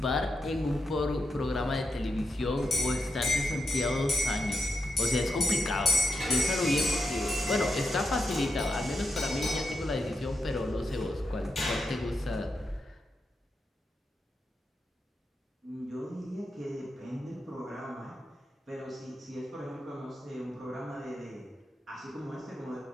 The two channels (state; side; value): normal; both; correlation 0.85